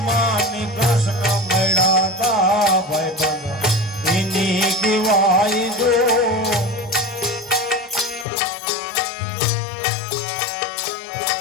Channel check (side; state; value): right; drops out; at 8.2 s